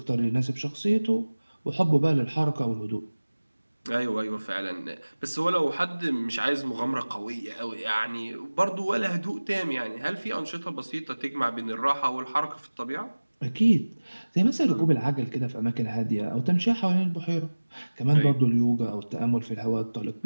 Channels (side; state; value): both; inverted; correlation -1.00